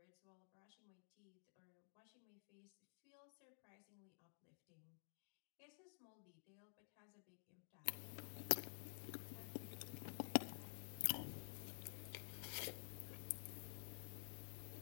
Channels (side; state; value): right; silent; digital silence